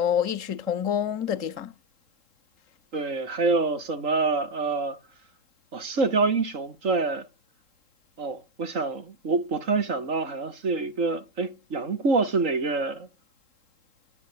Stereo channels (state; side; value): late; left; 3.7 ms